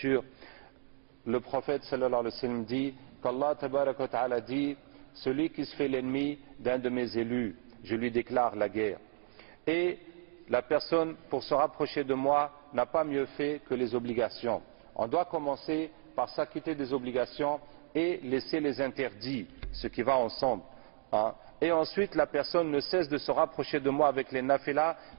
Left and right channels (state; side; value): silent; left; 56 dB below the other